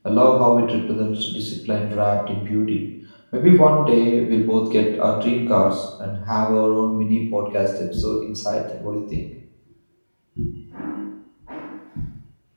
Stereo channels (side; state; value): both; inverted; correlation -1.00